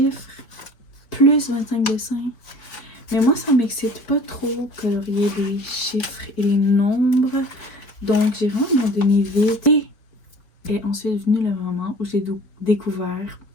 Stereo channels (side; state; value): right; late; 4.4 ms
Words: plus 25 dessins. Mais moi, ça m'excite pas trop colorier les chiffres et les nombres. Donc, j'ai vraiment abandonné vite. Et est ensuite venu le moment où j'ai découvert